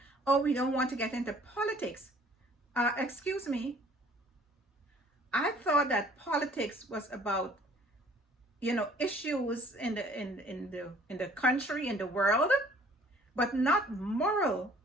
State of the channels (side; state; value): both; normal; correlation 0.55